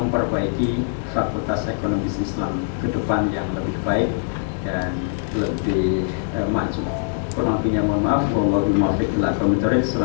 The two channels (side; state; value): right; silent; digital silence